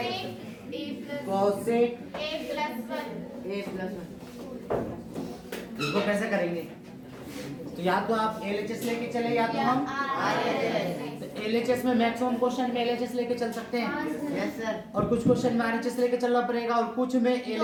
कोसेक ए प्लस 1। इसको कैसे करेंगे? तो या तो आप एलएचएस लेके चले या तो हम एलएचएस में मैक्सिमम क्वेश्चन में एलएचएस लेके चल सकते हैं। Yes sir. और कुछ क्वेश्चन में आरएचएस लेके चलना पड़ेगा, और कुछ में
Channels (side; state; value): both; identical; correlation 1.00